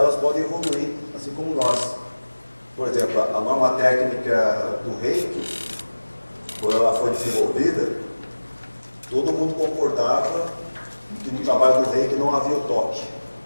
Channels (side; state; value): both; inverted; correlation -1.00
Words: podem evoluir, assim como nós. Por exemplo, a norma técnica do Reiki, quando ela foi desenvolvida, todo mundo concordava que no trabalho do Reiki não havia o toque.